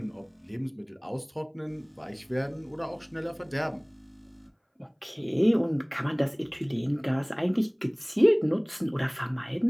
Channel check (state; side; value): identical; both; correlation 1.00